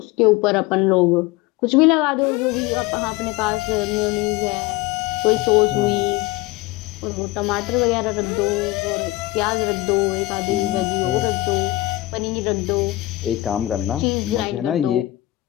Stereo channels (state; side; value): quieter; right; 18.6 dB